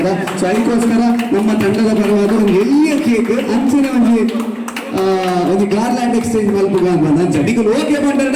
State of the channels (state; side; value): identical; both; correlation 1.00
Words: ಸೊ ಐಕೋಸ್ಕರ ನಮ್ಮ ತಂಡದ ಪರವಾದ ಒಂದು ಎಲ್ಲಿಯ ಕೇಕ್ ಅಂಚಿನ ಒಂದು ಗಾರ್ಲ್ಯಾಂಡ್ ಎಕ್ಸ್ಚೇಂಜ್ ಮಲ್ಪುಗ ಅಂತ ಅಂಚ ನಿಗಲ್ ಓಕೆ ಪಂಡರ್